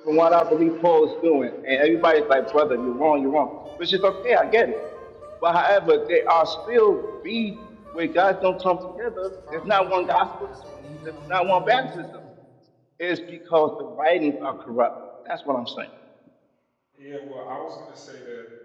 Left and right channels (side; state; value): both; identical; correlation 1.00